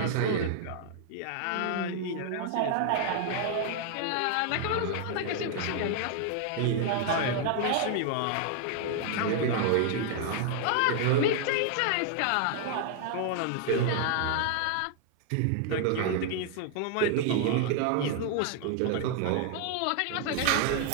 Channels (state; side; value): different; both; correlation 0.00